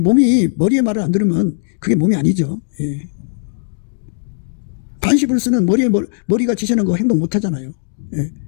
머리의 말을 안 들으면 그게 몸이 아니죠. 반시불수는 머리가 지시하는 거 행동 못 하잖아요.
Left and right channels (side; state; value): right; silent; digital silence